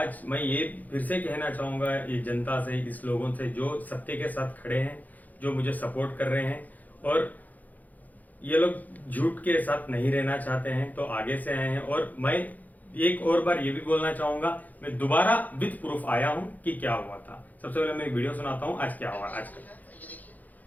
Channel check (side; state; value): right; late; 0.081 ms